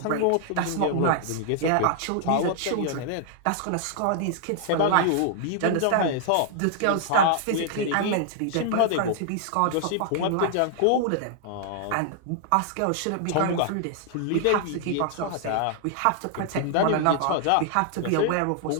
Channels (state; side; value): different; both; correlation -0.01